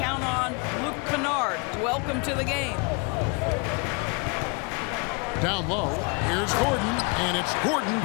on. Luke Kennard, welcome to the game. Down low, here's Gordon, and it's Gordon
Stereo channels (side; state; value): right; quieter; 31.6 dB